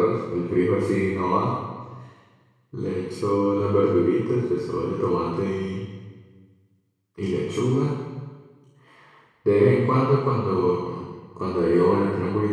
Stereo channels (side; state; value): both; identical; correlation 1.00